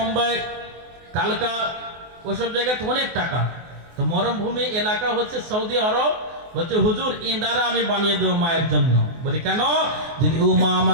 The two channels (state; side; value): late; left; 24 ms